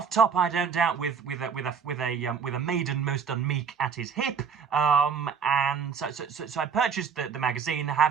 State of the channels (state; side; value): quieter; left; 6.4 dB